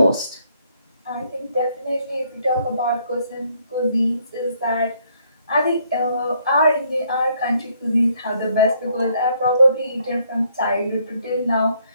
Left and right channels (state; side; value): inverted; both; correlation -0.69